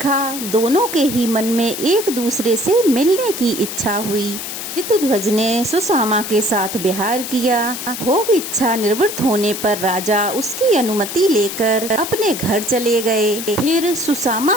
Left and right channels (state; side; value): noise; left; hiss, 7 dB below the sound